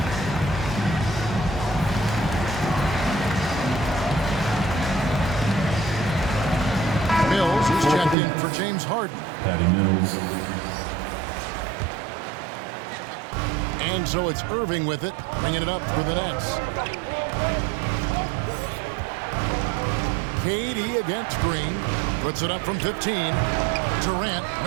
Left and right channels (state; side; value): drops out; left; at 8.2 s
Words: Mills is checked in for James Harden. Patty Mills. And so it's Irving with it, bringing it up for the Nets. KD against Green. Puts it up from 15. Durant,